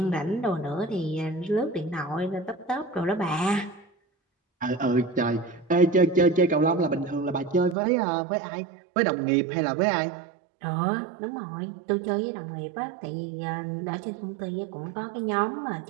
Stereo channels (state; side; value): drops out; left; at 7.8 s